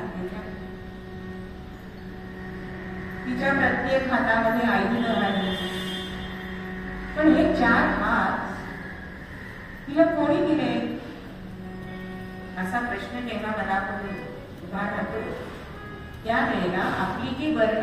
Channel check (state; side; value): identical; both; correlation 1.00